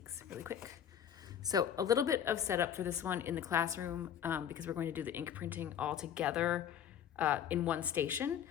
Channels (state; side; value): quieter; right; 9.3 dB